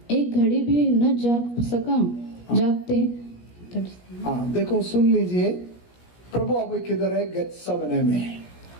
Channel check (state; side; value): late; right; 17 ms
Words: एक घड़ी भी न जागते? देखो सुन लीजिए, प्रभु अभी किधर है, गेत्सेमने में।